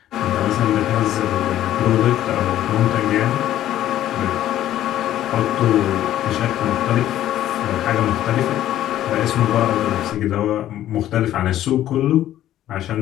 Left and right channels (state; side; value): quieter; right; 12.7 dB